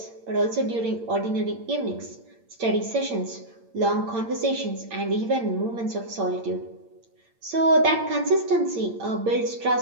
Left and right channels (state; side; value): late; left; 8.8 ms